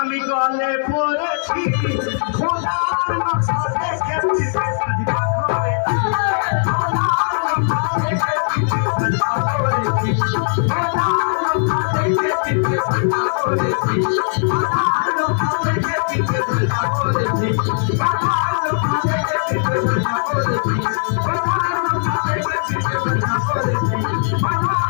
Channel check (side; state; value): right; silent; digital silence